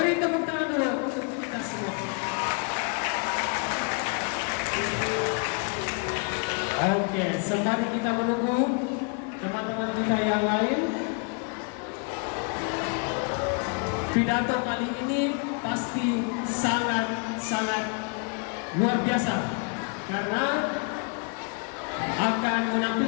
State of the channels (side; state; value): right; quieter; 37.7 dB